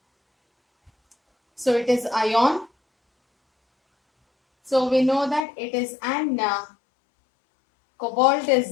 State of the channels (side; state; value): right; drops out; at 5.5 s